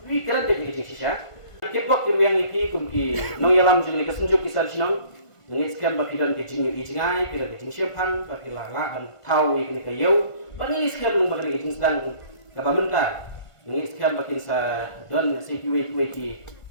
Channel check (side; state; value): right; late; 1.5 ms